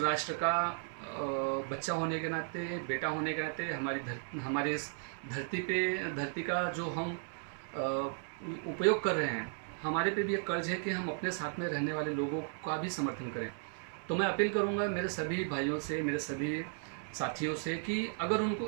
का बच्चा होने के नाते, बेटा होने के नाते, हमारे इस धरती का जो हम उपयोग कर रहे हैं, हमारे पे भी एक कर्ज है कि हम अपने साथ में रहने वाले लोगों का भी समर्थन करें। तो मैं अपील करूंगा मेरे सभी भाइयों से, मेरे सभी साथियों से कि अगर उनको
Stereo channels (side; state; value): left; silent; 54 dB below the other